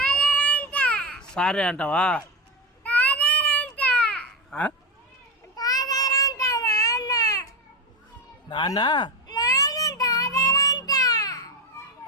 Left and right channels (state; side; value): normal; both; correlation 0.16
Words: సారే అంటావా? నాన్న